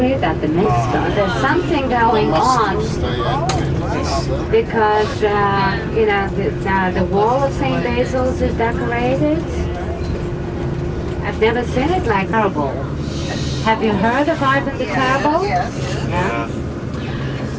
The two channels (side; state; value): both; identical; correlation 1.00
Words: that the myth started. There's something going on because, you know, the wall of St. Basil's is decorated. I've never seen it like terrible. Have you heard of Ivan the Terrible? Yes. Yeah.